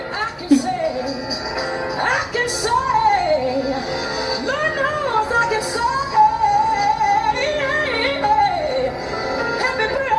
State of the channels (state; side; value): identical; both; correlation 1.00